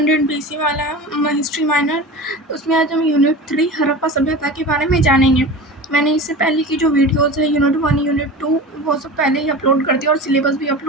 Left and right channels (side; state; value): both; normal; correlation 0.32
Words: BC वाला है, हिस्ट्री माइनर, उसमें आज हम यूनिट 3 हड़प्पा सभ्यता के बारे में जानेंगे। मैंने इससे पहले की जो वीडियोस है यूनिट 1 यूनिट 2 वो सब पहले ही अपलोड कर दिया और सिलेबस भी